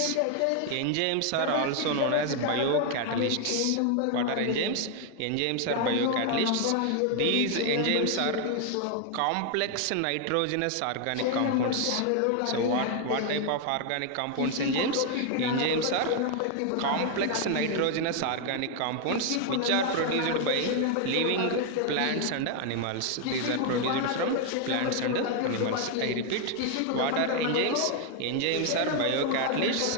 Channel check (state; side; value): different; both; correlation 0.01